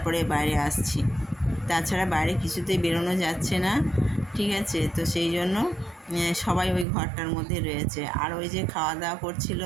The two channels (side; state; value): left; drops out; at 6.9 s